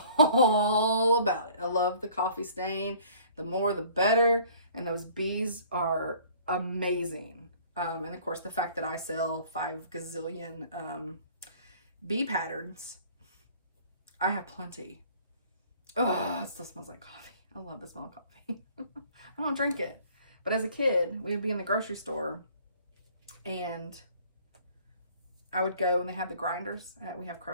about it. I love the coffee stain. The more, the better. And those bees are amazing. And of course, the fact that I sell 5 gazillion bee patterns, I have plenty. Oh, it still smells like coffee. I love the smell of coffee. I don't drink it. But as a kid, we would be in the grocery store and I would go and they had the grinders. We have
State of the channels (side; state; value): both; inverted; correlation -0.53